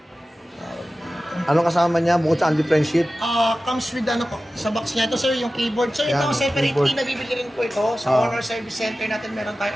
Anong kasama niya bukod sa only friendship? Comes with ano po, sa box niya. Ito sir, yung keyboard. Sir, Yan, ito separately keyboard. nabibili rin po ito. Sa Honor Service Center natin meron tayo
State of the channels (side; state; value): both; normal; correlation 0.95